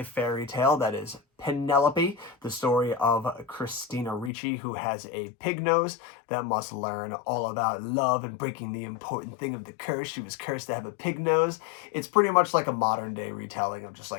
fairy tale that is Penelope, the story of Christina Ricci, who has a pig nose that must learn all about love and breaking the important thing of the curse. She was cursed to have a pig nose. It's pretty much like a modern day retelling of just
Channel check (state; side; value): drops out; right; at 4.3 s